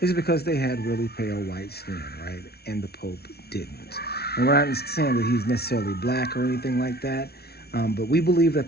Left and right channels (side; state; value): right; late; 0.46 ms